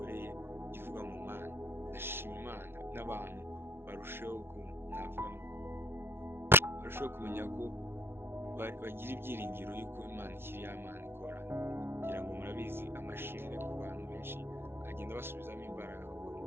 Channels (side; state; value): left; late; 0.11 ms